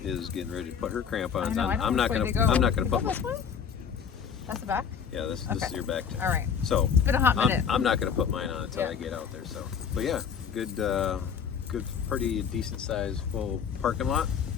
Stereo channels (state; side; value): quieter; right; 7.2 dB